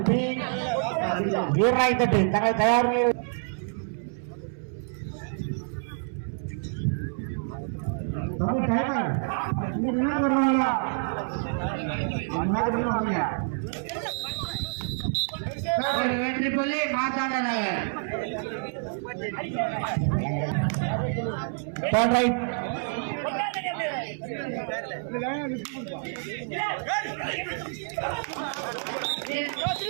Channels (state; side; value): silent; left; 60 dB below the other